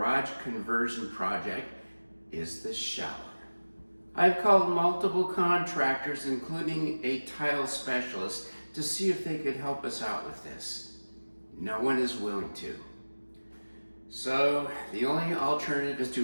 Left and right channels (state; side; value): inverted; both; correlation -1.00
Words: conversion project is the shower. I've called multiple contractors, including a tile specialist, to see if they could help us out with this. No one is willing to. So the only alternative is